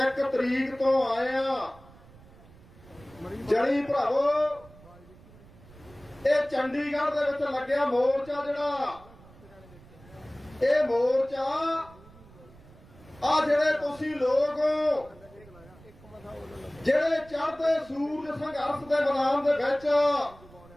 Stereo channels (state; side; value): noise; right; rumble, 23 dB below the sound